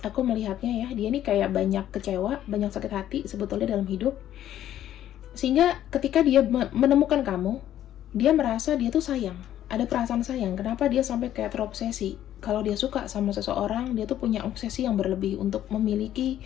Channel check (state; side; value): quieter; right; 11.8 dB